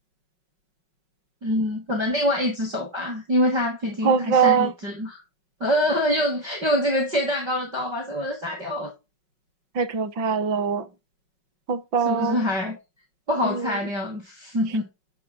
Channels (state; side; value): late; left; 5.4 ms